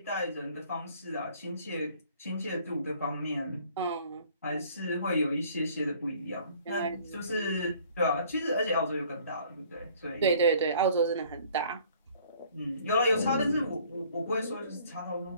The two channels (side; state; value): both; inverted; correlation -0.56